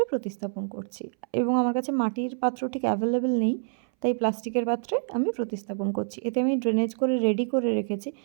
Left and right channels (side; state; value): left; silent; 60 dB below the other